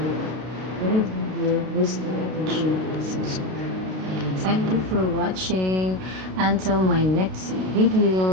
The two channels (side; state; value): left; late; 32 ms